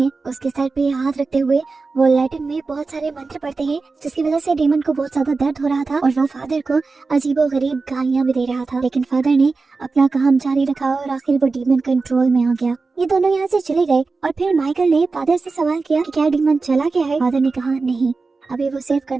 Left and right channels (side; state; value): left; quieter; 4.1 dB